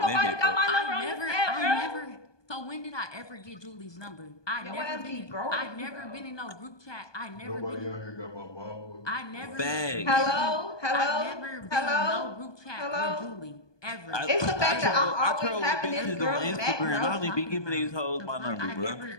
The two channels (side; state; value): right; late; 1.2 ms